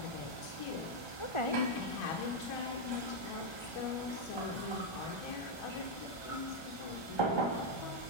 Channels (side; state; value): right; late; 1.3 ms